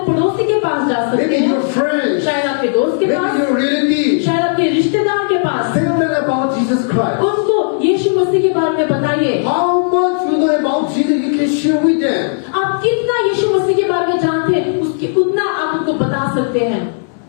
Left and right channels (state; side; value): silent; right; digital silence